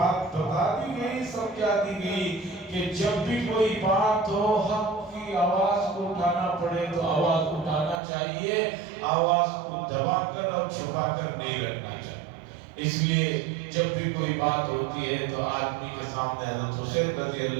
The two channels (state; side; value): drops out; left; at 8.0 s